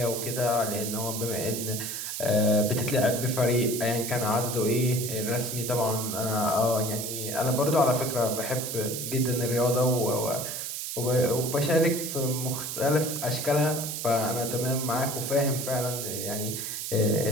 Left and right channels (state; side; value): noise; right; hiss, 5 dB below the sound